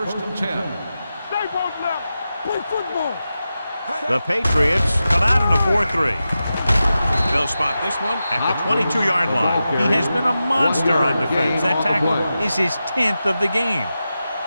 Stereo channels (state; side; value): inverted; both; correlation -0.92